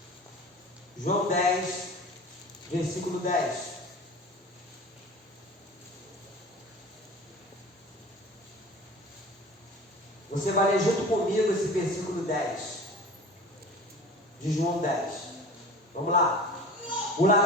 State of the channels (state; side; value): normal; both; correlation 0.39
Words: João 10, versículo 10. Você vai ler junto comigo esse versículo 10 de João 10. Vamos lá. O